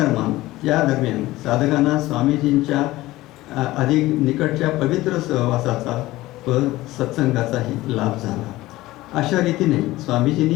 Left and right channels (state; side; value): quieter; right; 17.7 dB